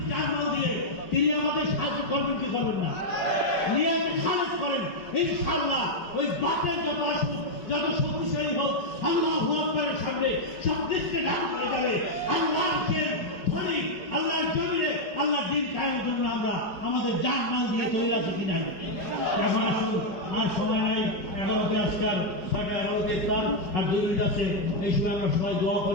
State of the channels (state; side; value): late; right; 4.8 ms